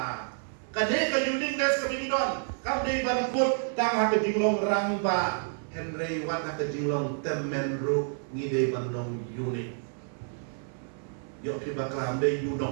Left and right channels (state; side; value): silent; left; 55 dB below the other